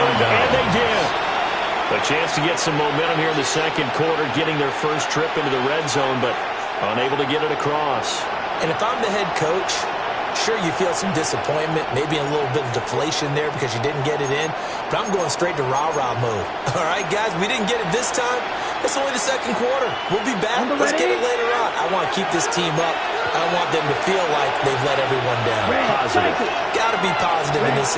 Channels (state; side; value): identical; both; correlation 1.00